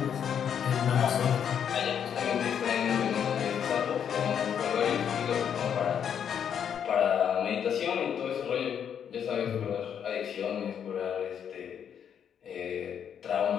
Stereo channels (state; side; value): quieter; right; 8.3 dB